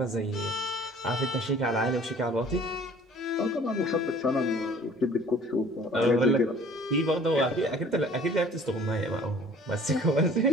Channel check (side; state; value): both; normal; correlation 0.51